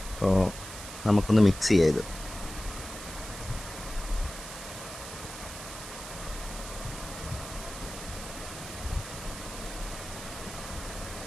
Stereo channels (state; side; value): noise; right; hiss, 11 dB below the sound